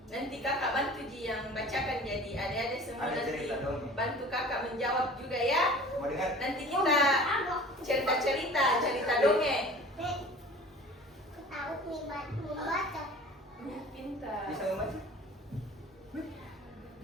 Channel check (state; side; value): normal; both; correlation 0.43